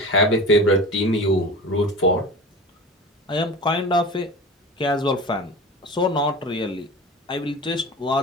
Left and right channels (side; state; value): both; normal; correlation 0.33